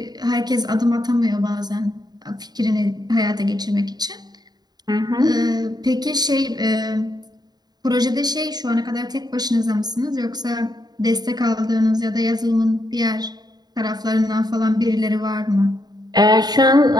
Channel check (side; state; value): left; late; 0.20 ms